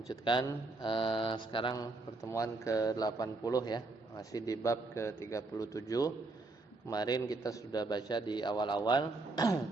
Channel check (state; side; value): quieter; left; 3.3 dB